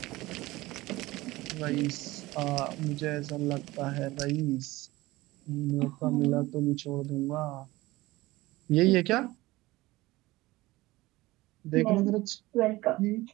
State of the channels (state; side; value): quieter; left; 19.2 dB